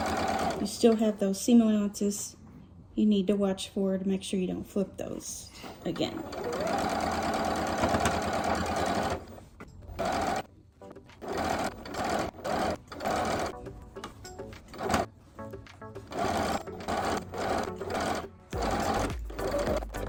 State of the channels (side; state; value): both; identical; correlation 1.00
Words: You still have those seam allowances you need to watch for to make sure you don't flip those again.